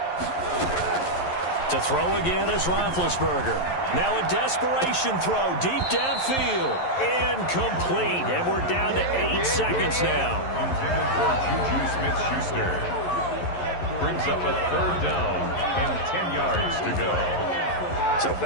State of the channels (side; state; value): right; late; 11 ms